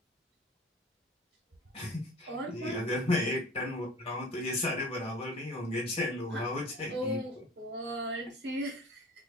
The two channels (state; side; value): normal; both; correlation 0.43